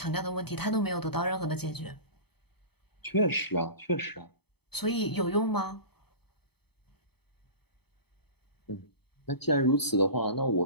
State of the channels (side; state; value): right; late; 0.97 ms